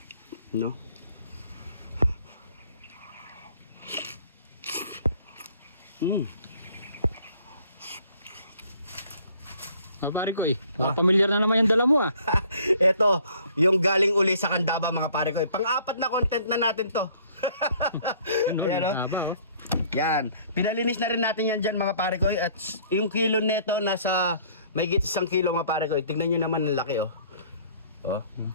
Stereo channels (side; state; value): both; inverted; correlation -0.58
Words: No? Pare ko pamilyar na naman yung dala mo ah. Ito, yung galing uli sa Candaba mga pare ko. Pang-apat na content na natin to. Ayan, no? Yan. Pinalinis na rin natin yan dyan mga pare ko. At yung kilo neto nasa may 1 kilo mga pare ko. Tignan nyo naman ang laki oh. Oh.